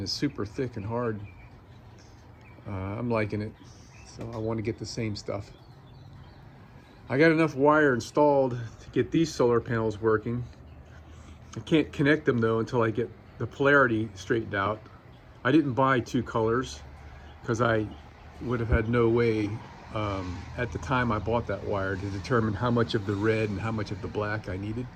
is super thick and hard. I'm liking it, so I want to get the same stuff. I got enough wire installed to get these solar panels working. I can't connect them though until I get the polarity straightened out. I didn't buy two colors because I would have had no way at the time I bought that wire to determine how much of the red and how much of the black I needed.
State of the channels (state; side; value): identical; both; correlation 1.00